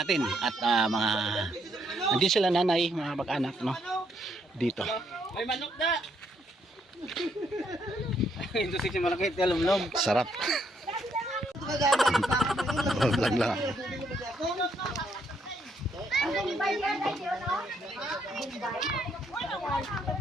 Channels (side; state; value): both; normal; correlation 0.73